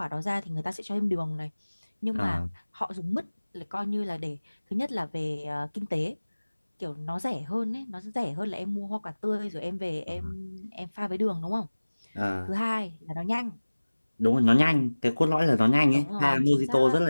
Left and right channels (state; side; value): inverted; both; correlation -1.00